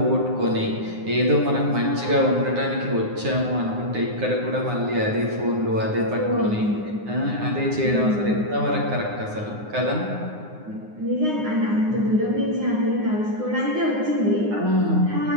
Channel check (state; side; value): late; left; 9.6 ms